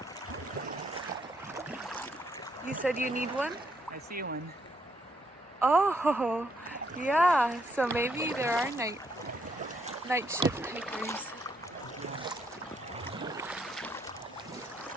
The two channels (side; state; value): both; normal; correlation 0.74